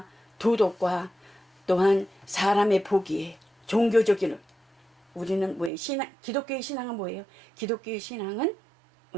도덕과 또한 사람의 보기에 종교적인, 우리는 뭐예요? 기독교의 신앙은 뭐예요? 기독교의 신앙은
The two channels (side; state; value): left; drops out; at 5.7 s